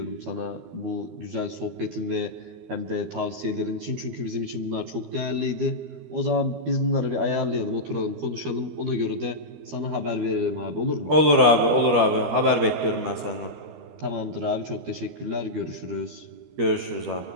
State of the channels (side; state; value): left; late; 12 ms